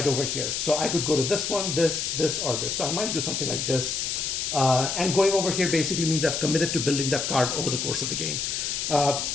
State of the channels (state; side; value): noise; left; hiss, 1 dB below the sound